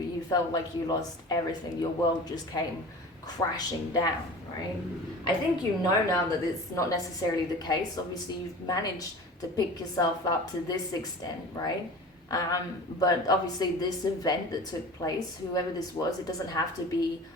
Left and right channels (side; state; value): both; normal; correlation 0.38